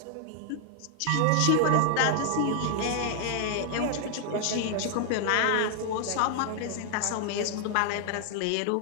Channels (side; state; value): both; different; correlation 0.00